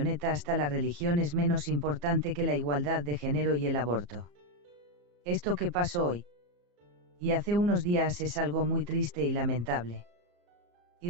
hasta la religión es menos importante que la igualdad de género y el aborto. Esto que pasó hoy y hace unos días es algo muy triste y lamentable. Y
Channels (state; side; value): late; left; 34 ms